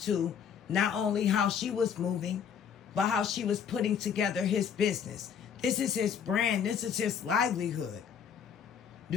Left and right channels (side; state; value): right; quieter; 7.6 dB